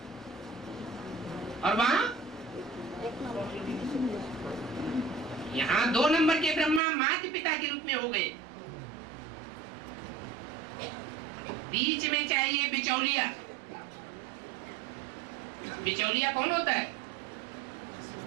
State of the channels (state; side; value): drops out; left; at 6.8 s